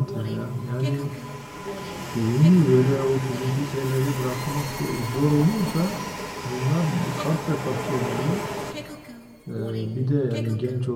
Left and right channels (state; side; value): identical; both; correlation 1.00